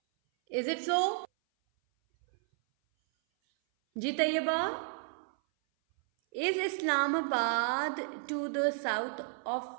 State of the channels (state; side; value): silent; left; 56 dB below the other